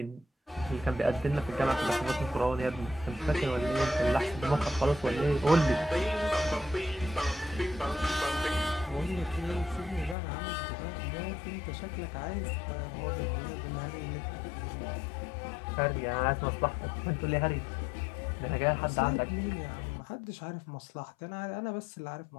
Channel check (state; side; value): drops out; right; at 10.2 s